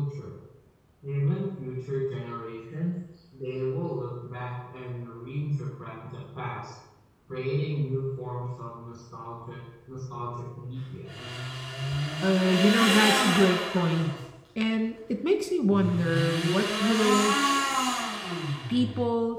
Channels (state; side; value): identical; both; correlation 1.00